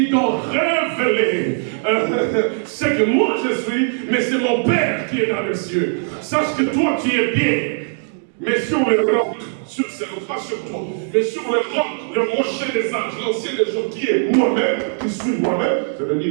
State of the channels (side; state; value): left; silent; digital silence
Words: t'ont révélé ce que moi je suis, mais c'est mon Père qui est dans les cieux. Sache que toi tu es bien, mais sur le roc, pas sur toi, mais sur le roc, le rocher des anges, l'ancien des jours qui est moi-même, qui suis moi-même,